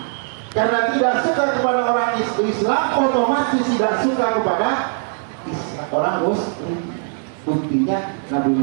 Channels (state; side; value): silent; left; 59 dB below the other